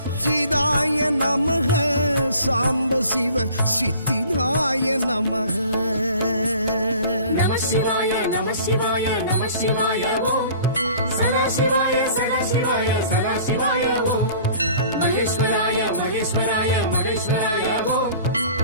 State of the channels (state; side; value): inverted; both; correlation -0.47